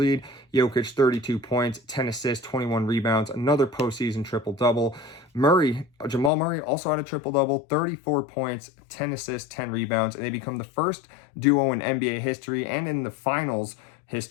Jokic, 32 points, 10 assists, 21 rebounds, another postseason triple-double. Jamal Murray also had a triple-double, 34 points, 10 assists, 10 rebounds, and they become the first duo in NBA history and in the finals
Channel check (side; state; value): right; drops out; at 6.3 s